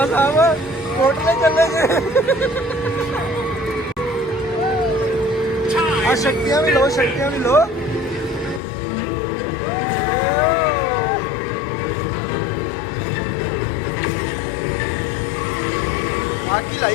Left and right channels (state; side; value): drops out; right; at 8.6 s